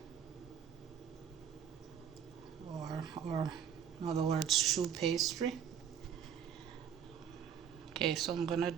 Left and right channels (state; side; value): quieter; left; 8.4 dB